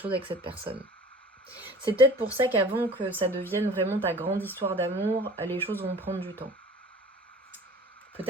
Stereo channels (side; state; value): both; normal; correlation 0.44